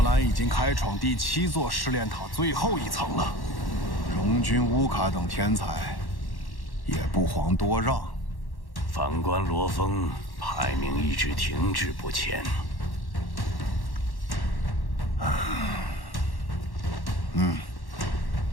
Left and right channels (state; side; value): late; right; 1.1 ms